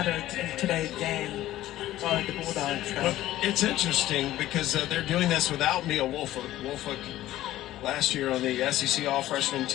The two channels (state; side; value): quieter; right; 14.6 dB